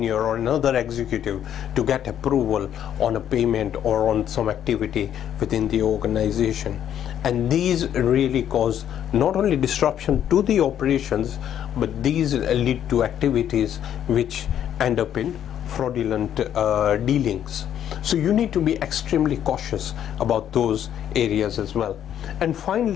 or another executive to get approval on a payment or on some activity within the organization. And these really cause not only disruption to the operations, but these lead to activities which end up in fraudulent dealings. So you need to be extremely cautious about those areas as well. And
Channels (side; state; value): right; quieter; 10.1 dB